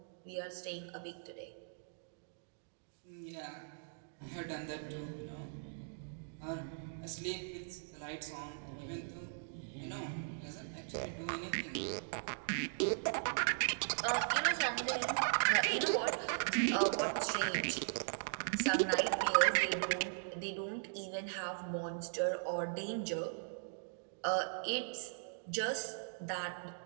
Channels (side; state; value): left; silent; digital silence